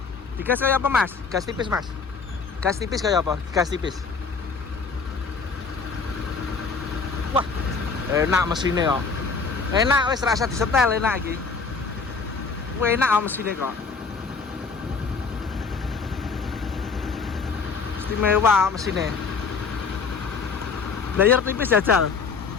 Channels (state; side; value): quieter; right; 5.0 dB